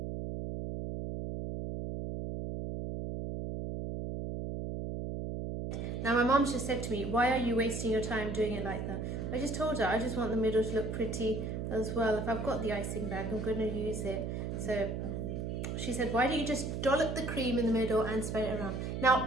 Now my mom's just said to me, why are you wasting your time doing it like that? I just told her I just want the middle to look pretty as well. If I've got the icing bag, I'm going to use it. So she said, why don't you just dollop the cream in the middle and spread it around?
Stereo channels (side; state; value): right; noise; hum, 4 dB below the sound